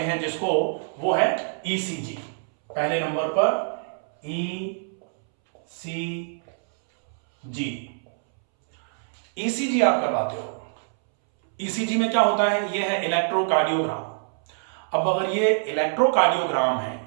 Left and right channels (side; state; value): left; silent; 62 dB below the other